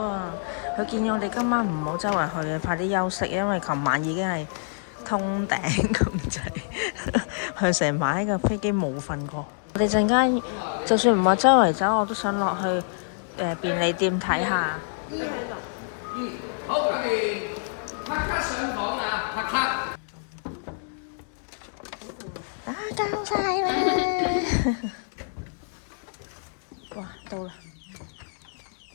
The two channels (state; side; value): silent; right; digital silence